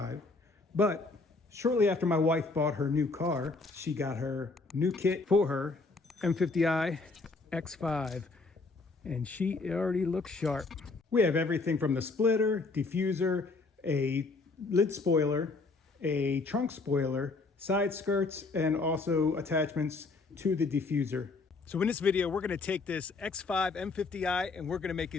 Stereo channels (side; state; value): right; quieter; 3.8 dB